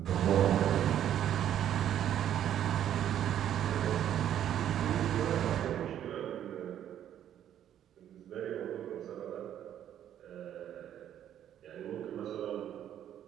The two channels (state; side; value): quieter; left; 10.6 dB